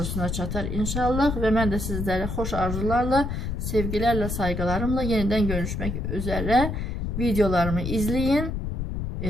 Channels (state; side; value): noise; left; rumble, 3 dB below the sound